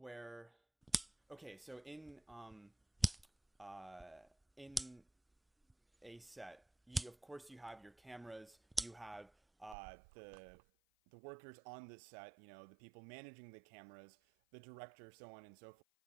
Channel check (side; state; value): left; drops out; at 9.8 s